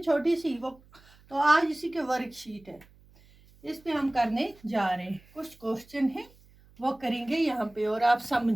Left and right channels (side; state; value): right; noise; hum, 27 dB below the sound